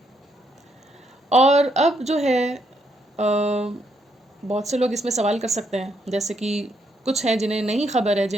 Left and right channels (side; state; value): both; normal; correlation 0.75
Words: اور اب جو ہے بہت سے لوگ اس میں سوال کر سکتے ہیں، جیسے کہ کچھ ہیں جنہیں نہیں خبر ہے،